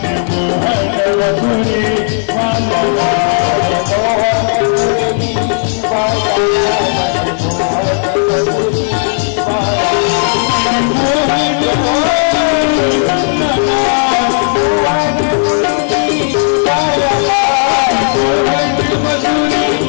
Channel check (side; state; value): right; silent; 67 dB below the other